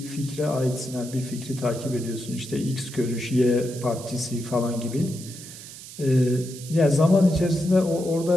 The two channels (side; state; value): right; noise; hiss, 14 dB below the sound